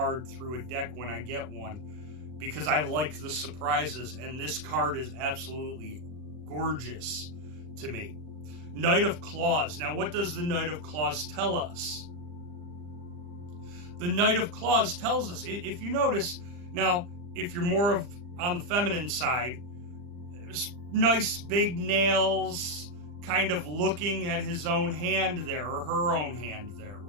through a deck when I get one, because I like the surprises, and this card is absolutely gorgeous to me. Knight of Claws. Now, what does the Knight of Claws tell us? The Knight of Claws tells us, if you notice, now, if you're more on the feminine side, nice big nails, kind of looking at his own hand there, or her own hand there,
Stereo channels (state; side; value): late; left; 40 ms